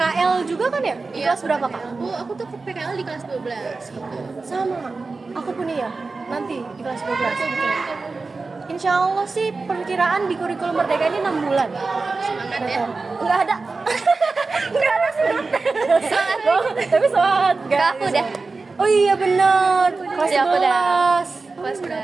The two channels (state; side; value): quieter; left; 3.9 dB